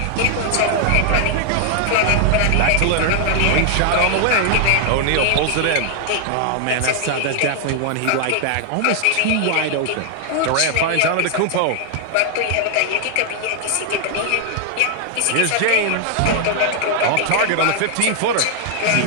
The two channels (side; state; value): both; different; correlation 0.00